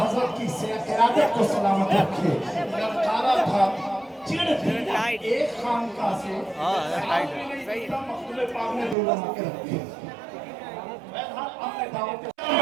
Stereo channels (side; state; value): left; drops out; at 9.0 s